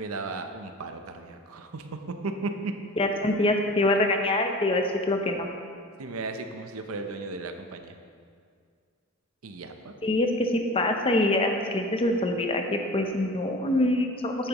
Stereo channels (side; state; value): both; normal; correlation 0.39